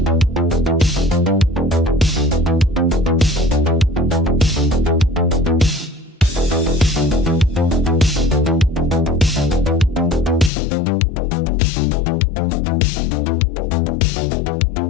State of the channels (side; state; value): right; drops out; at 10.5 s